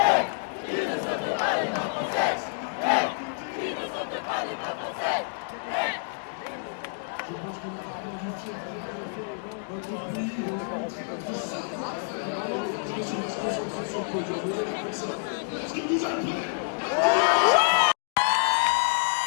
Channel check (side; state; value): right; silent; digital silence